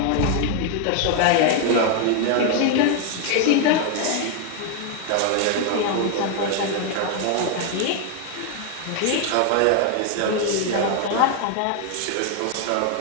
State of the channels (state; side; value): different; both; correlation 0.00